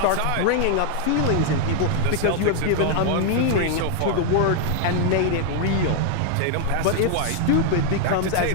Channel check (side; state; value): both; different; correlation 0.00